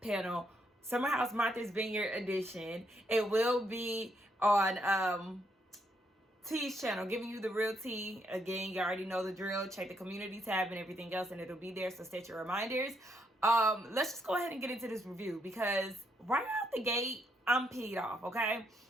Summer House Martha's Vineyard edition. It will be on T's channel, giving you the real tea. Again, you already know the drill. Check the community tab and everything else, and it'll be there, so set your reminders. Let's just go ahead and get into this review, because right out the gate, I'm peed off, okay?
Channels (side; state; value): both; normal; correlation 0.75